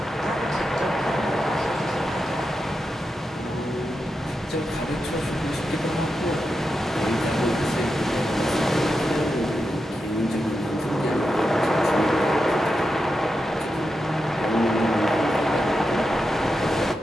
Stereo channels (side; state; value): both; normal; correlation 0.88